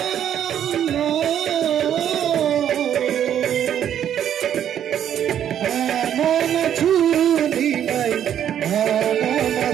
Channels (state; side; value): quieter; left; 9.9 dB